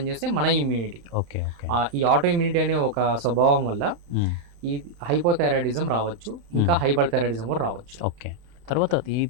మన ఇమ్యూనిటీ. ఈ ఆటో ఇమ్యూనిటీ అనే ఒక స్వభావం వల్ల ఈ హైపోథైరాయిడిజం రావచ్చు, ఇంకా హైపర్ థైరాయిడిజం కూడా రావచ్చు. తర్వాత ఈ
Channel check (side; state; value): left; late; 33 ms